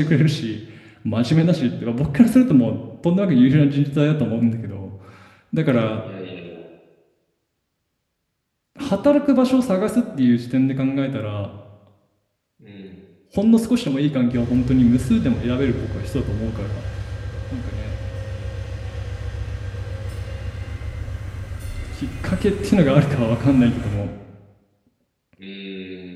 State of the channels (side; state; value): both; identical; correlation 1.00